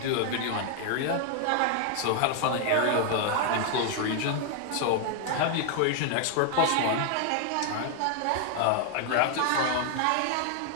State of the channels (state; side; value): different; both; correlation 0.00